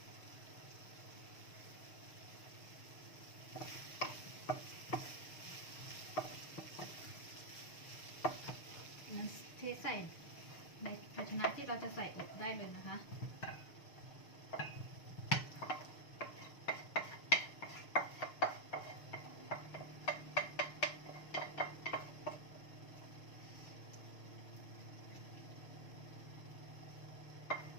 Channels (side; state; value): right; late; 6.5 ms